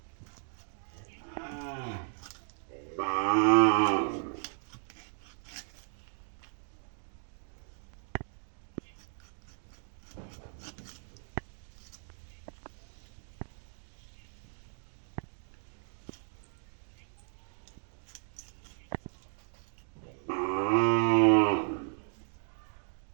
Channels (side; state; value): left; silent; 54 dB below the other